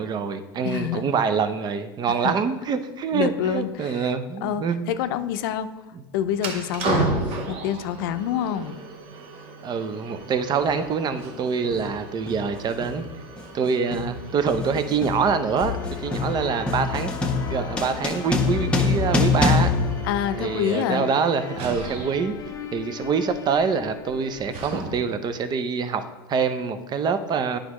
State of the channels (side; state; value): both; normal; correlation 0.30